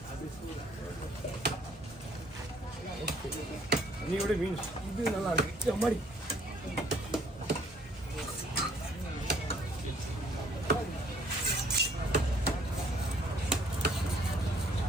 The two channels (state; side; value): normal; both; correlation 0.62